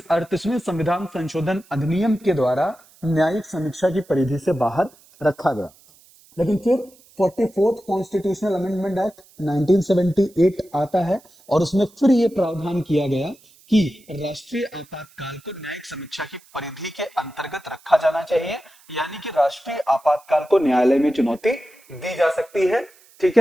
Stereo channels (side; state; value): right; noise; hiss, 28 dB below the sound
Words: संविधान संशोधन अधिनियम के द्वारा न्यायिक समीक्षा की परिधि से बाहर रखा गया। लेकिन फिर 44th कॉन्स्टिट्यूशनल अमेंडमेंट एक्ट 1978 आता है और उसमें फिर यह प्रावधान किया गया कि राष्ट्रीय आपातकाल को न्यायिक समीक्षा की परिधि के अंतर्गत रखा जाना चाहिए, यानी कि राष्ट्रीय आपातकाल को न्यायालय में चुनौती दी जा सकती है। ठीक